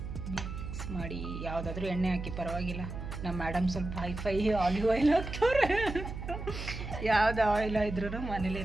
ಮಿಕ್ಸ್ ಮಾಡಿ ಯಾವುದಾದ್ರೂ ಎಣ್ಣೆ ಹಾಕಿ ಪರವಾಗಿಲ್ಲ. ನಮ್ಮ ಮೇಡಮ್ ಸ್ವಲ್ಪ ಹೈಫೈ ಆಲಿವ್ ಆಯಿಲ್ ಹಾಕ್ತವ್ರೆ. ಯಾವ್ದು ಆಯಿಲ್ ಇದ್ರೂ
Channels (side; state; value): right; noise; hum, 7 dB below the sound